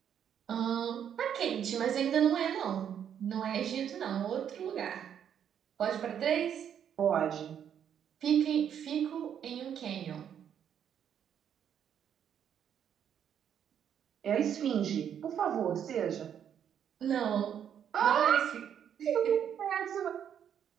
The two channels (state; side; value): quieter; left; 8.9 dB